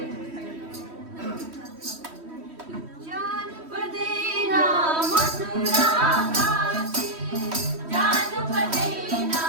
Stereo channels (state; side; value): late; left; 3.1 ms